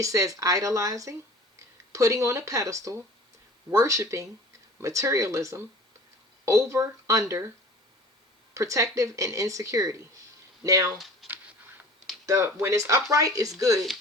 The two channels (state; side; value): normal; both; correlation 0.44